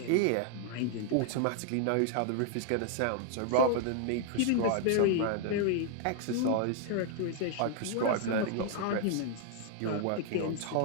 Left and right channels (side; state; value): both; different; correlation 0.00